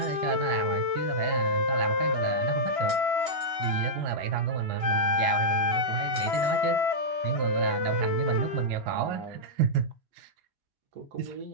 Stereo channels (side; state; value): left; late; 2.9 ms